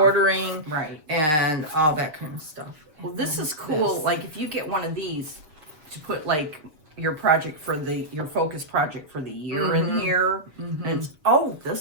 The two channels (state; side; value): late; left; 6.7 ms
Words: Right. and all that kind of stuff. Well, And this then is cool. this. Like if you get one of these to put like your project for your focus project for the year in here, and it's